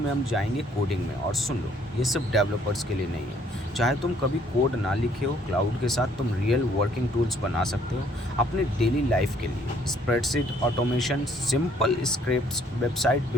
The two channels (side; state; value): both; normal; correlation 0.63